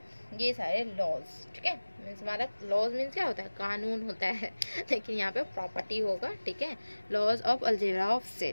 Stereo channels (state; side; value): inverted; both; correlation -1.00